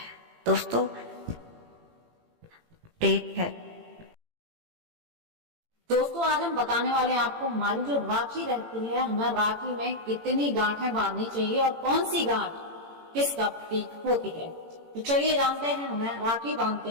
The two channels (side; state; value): left; late; 18 ms